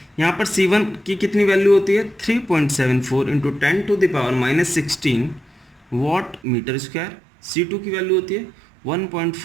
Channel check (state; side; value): drops out; left; at 6.4 s